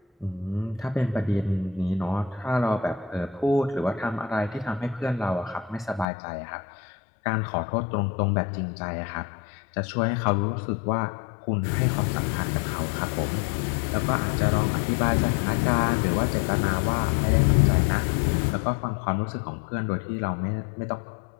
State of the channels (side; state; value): right; drops out; at 6.1 s